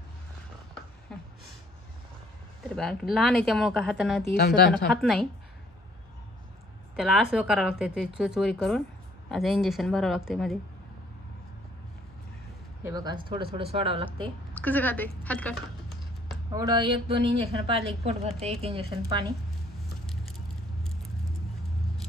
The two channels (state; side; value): normal; both; correlation 0.61